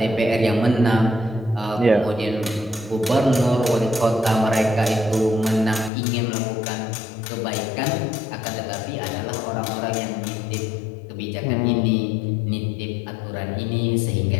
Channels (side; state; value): right; drops out; at 5.9 s